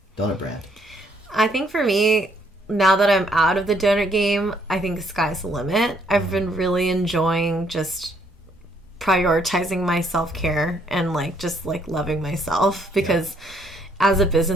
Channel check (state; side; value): normal; both; correlation 0.68